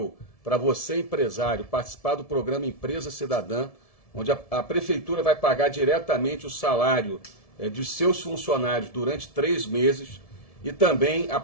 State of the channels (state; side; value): late; right; 1.7 ms